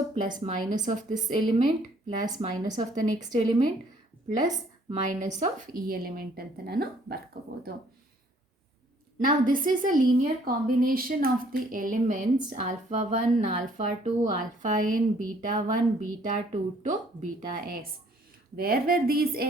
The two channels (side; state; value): both; normal; correlation 0.61